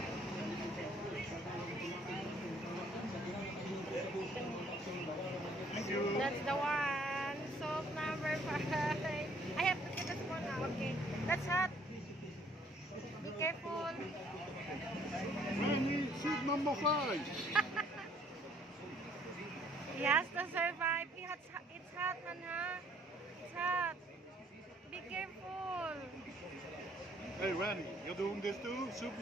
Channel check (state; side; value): normal; both; correlation 0.61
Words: Thank you. That's the one. Soap number 5. I have to get this one now. Okay. That's hot. Be careful. Randy, soup number 5. He has to survive. It's hot, man, huh? It's hot. Be careful. Hey Randy, you're doing this too? Soup